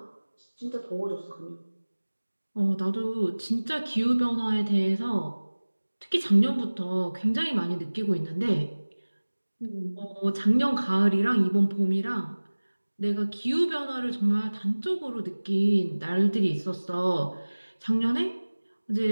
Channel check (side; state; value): both; inverted; correlation -1.00